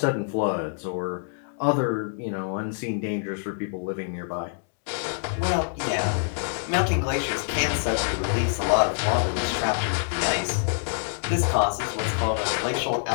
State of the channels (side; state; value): right; silent; digital silence